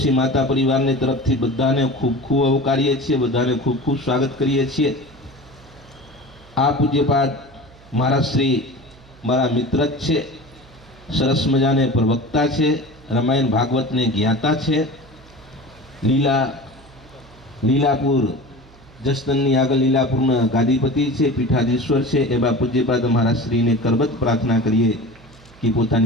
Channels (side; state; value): right; noise; hum, 24 dB below the sound